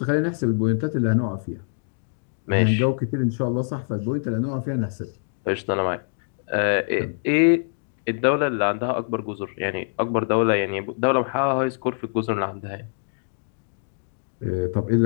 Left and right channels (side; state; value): right; silent; digital silence